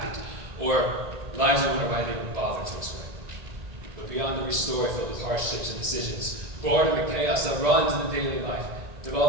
or lives you wouldn't have even bothered to explain. But beyond every story filled with hardships and decisions, boredom and chaos that runs in the daily life,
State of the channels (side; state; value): left; late; 1.8 ms